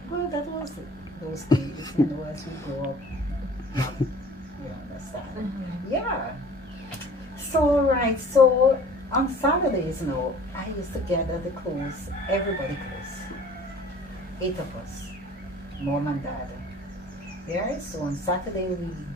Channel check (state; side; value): normal; both; correlation 0.48